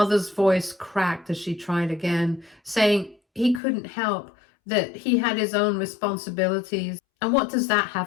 voice cracked as she tried again, saying he couldn't help, that he had his own responsibilities. And what does that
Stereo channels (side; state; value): right; drops out; at 3.6 s